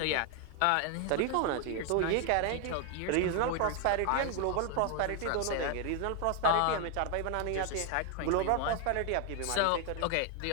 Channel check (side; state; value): both; different; correlation 0.00